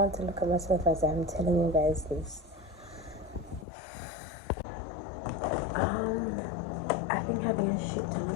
to look at myself as I'm telling you guys this. I've been having a shit ton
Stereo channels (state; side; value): drops out; right; at 3.7 s